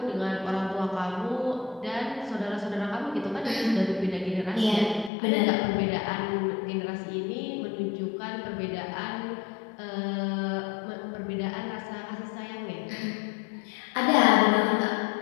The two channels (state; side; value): drops out; right; at 5.1 s